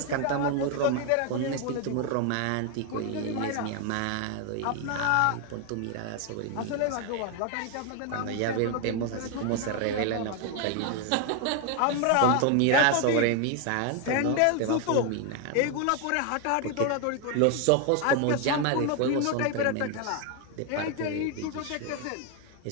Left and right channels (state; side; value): different; both; correlation 0.01